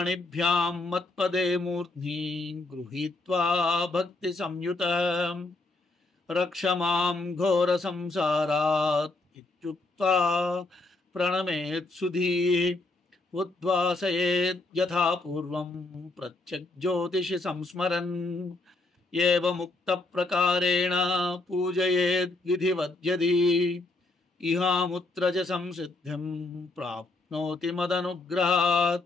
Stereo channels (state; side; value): quieter; right; 3.1 dB